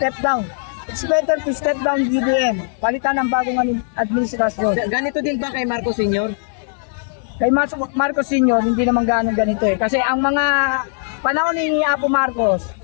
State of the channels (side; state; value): right; silent; 66 dB below the other